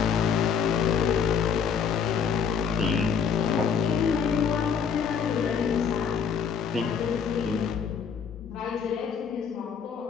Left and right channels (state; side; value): quieter; right; 6.9 dB